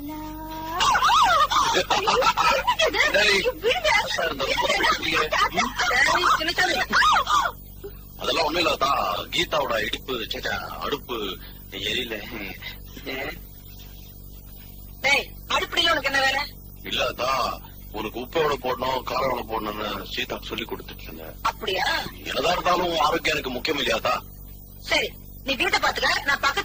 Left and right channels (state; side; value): identical; both; correlation 1.00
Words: ஆத்தா இருந்தா ரொம்ப தான் அழுத்துக்கிறியே. டேய் சின்னசாமி, அதெல்லாம் ஒண்ணும் இல்லாதா, கீதாவோட இடுப்பு சேச்சா அடுப்பு எரியல. டேய் அடுப்படியில உனக்கு என்ன வேலை? இல்லாதா, உனக்கு உப்பு எவ்வளவு போடணும் காரம் எவ்வளவு போடணும்னு சீதாக்கு சொல்லி கொடுத்துட்டு இருந்தேன். அப்படியா? என்னதான் இருந்தாலும் உன் ஆரோக்கியம் எனக்கு முக்கியம் இல்லையாத்தா? சரி, நீ வீட்டை பாத்துக்க, நான்